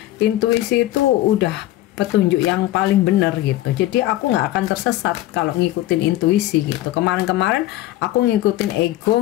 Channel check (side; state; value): right; quieter; 15.1 dB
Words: intuisi itu udah petunjuk yang paling benar gitu. Jadi aku nggak akan tersesat kalau ngikutin intuisi gitu. Kemarin-kemarin aku ngikutin